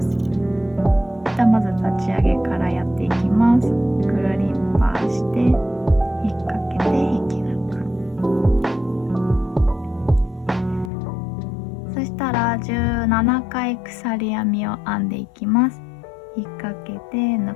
まず立ち上げからやっていきます。くるりんぱして引っ掛けて引き抜く。そしたら17回鎖編みを編んでいきます。引っ掛けて抜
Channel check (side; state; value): right; drops out; at 10.9 s